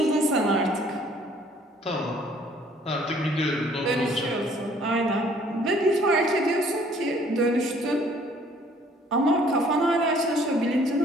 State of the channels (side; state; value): both; normal; correlation 0.59